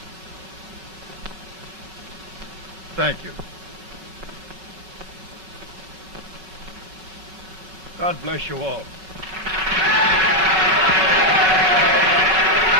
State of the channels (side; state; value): both; normal; correlation 0.00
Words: Thank you. God bless you all.